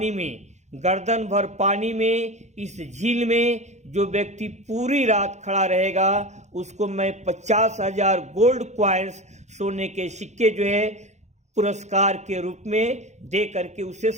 में, गर्दन भर पानी में, इस झील में जो व्यक्ति पूरी रात खड़ा रहेगा उसको मैं 50,000 गोल्ड क्वाइंस, सोने के सिक्के जो है पुरस्कार के रूप में दे करके उसे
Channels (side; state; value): left; late; 0.33 ms